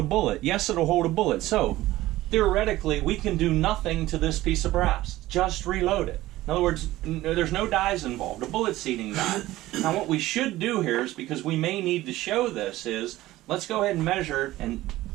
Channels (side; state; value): left; quieter; 16.5 dB